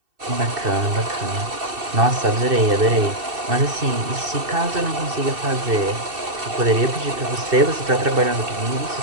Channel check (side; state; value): left; late; 2.7 ms